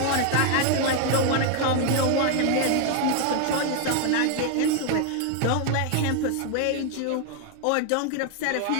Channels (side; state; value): both; different; correlation 0.00